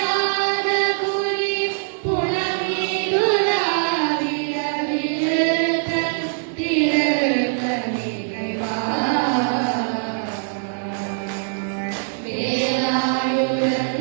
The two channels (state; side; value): silent; left; digital silence